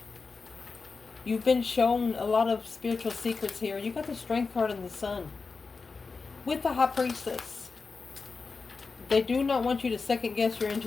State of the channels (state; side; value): quieter; right; 4.5 dB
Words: You've been shown a lot of spiritual secrets here. You got the strength card in the sun. With the high priestess. They do not want you to second guess your